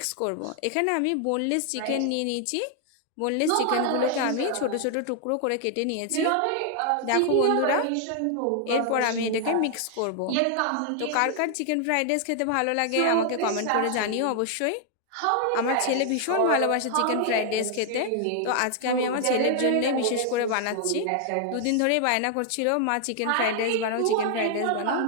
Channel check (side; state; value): both; different; correlation 0.00